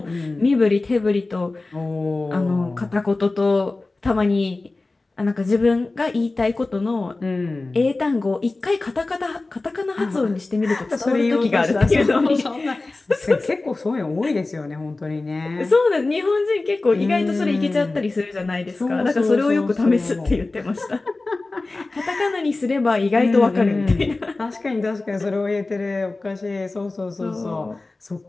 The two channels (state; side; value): quieter; right; 3.3 dB